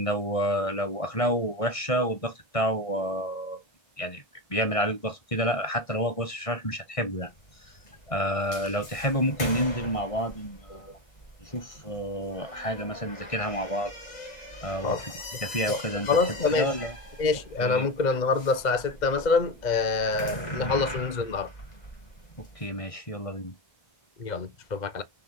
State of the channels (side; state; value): right; late; 1.6 ms